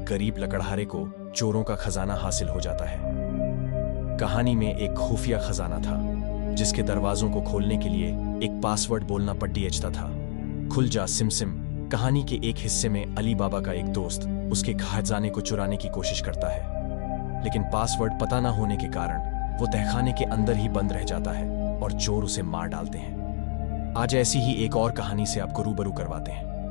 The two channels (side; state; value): right; silent; digital silence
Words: गरीब लकड़हारे को चोरों का खजाना हासिल हो जाता है। कहानी में एक खुफिया खजाना था, जिसके दरवाजों को खोलने के लिए एक पासवर्ड बोलना पड़ता था। खुल जा सिमसिम कहानी के एक हिस्से में अली बाबा का एक दोस्त उसके खजाने को चुराने की कोशिश करता है, लेकिन पासवर्ड पता न होने के कारण वो तहखाने के अंदर ही बंद रह जाता है और चोर उसे मार डालते हैं। आज ऐसी ही एक और कहानी से आपको रूबरू करवाते